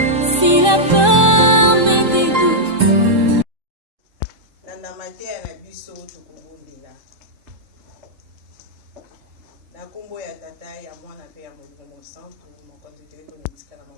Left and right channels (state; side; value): late; left; 3.7 ms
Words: Si la peur met des doutes. Nanda matea na biso tukubundila. Na kombo ya tata ya mwana pe ya Molimo Santo mokonzi teko nitika na